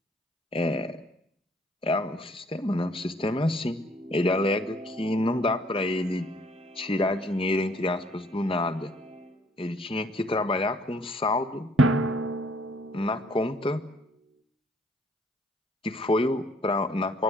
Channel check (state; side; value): normal; both; correlation 0.61